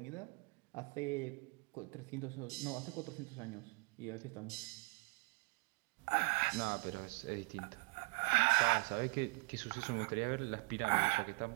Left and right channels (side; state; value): left; quieter; 31.5 dB